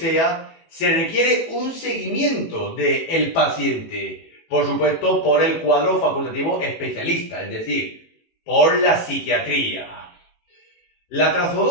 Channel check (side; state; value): right; late; 18 ms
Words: se requiere un seguimiento del paciente, por supuesto por el cuadro facultativo especialista, es decir, por la psiquiatría. La